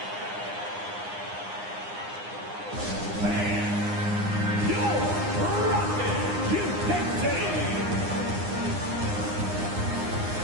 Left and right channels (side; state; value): left; late; 9.8 ms